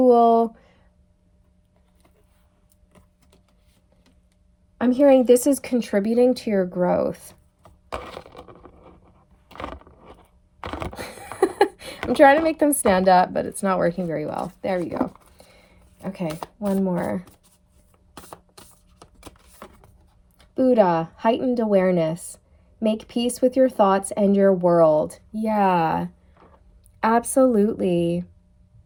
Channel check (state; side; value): identical; both; correlation 1.00